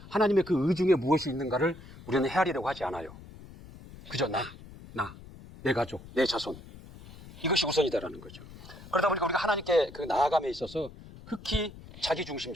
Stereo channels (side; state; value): left; noise; rumble, 17 dB below the sound